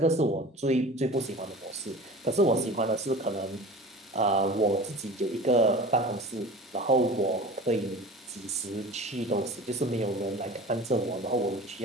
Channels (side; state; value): both; normal; correlation 0.38